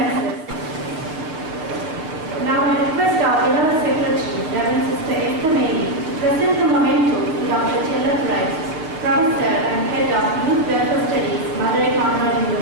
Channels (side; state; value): left; late; 6.5 ms